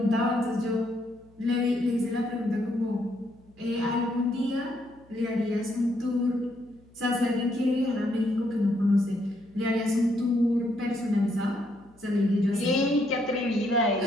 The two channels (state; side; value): noise; left; hum, 29 dB below the sound